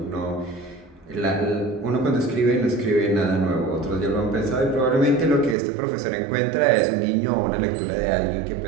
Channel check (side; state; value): left; drops out; at 5.6 s